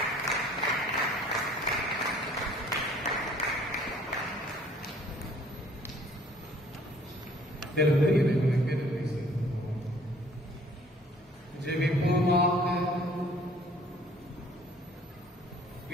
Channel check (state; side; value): normal; both; correlation 0.56